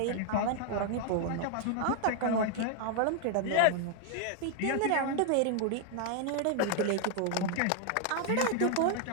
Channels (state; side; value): different; both; correlation 0.00